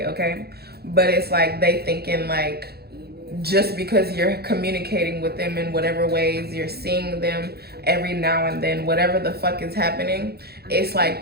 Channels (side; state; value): left; late; 0.46 ms